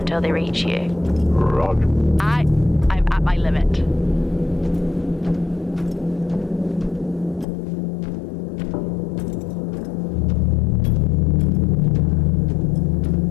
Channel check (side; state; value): right; drops out; at 7.5 s